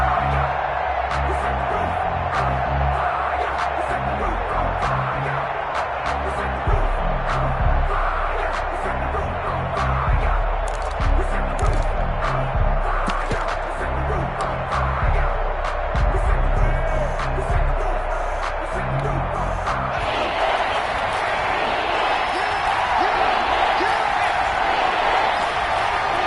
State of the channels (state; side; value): identical; both; correlation 1.00